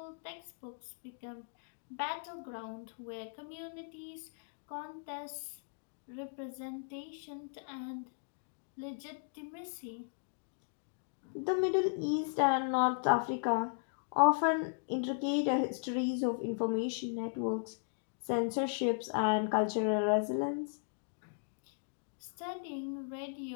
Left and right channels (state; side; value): silent; right; digital silence